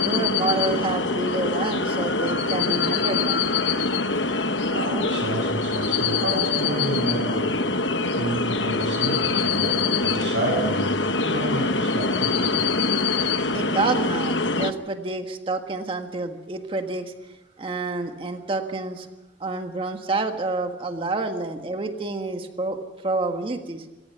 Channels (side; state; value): both; normal; correlation 0.17